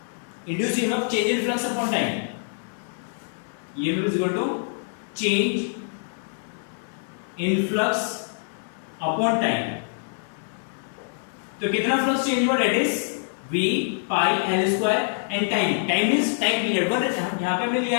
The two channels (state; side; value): silent; right; digital silence